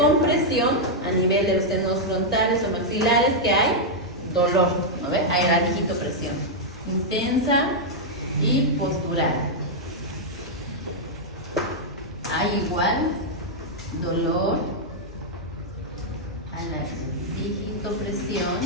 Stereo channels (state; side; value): normal; both; correlation -0.04